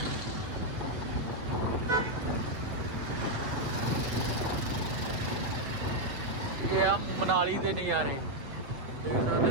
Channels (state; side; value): late; left; 8.2 ms